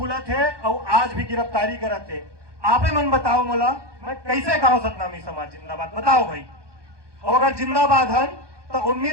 थे और आज भी गिरफ्तारी करत थे। आपे मन बताओ मोला मैं कैसे कहो सतनामी समाज जिंदाबाद बताओ भाई और अगर जिंदाबाद हन तो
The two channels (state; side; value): late; left; 1.2 ms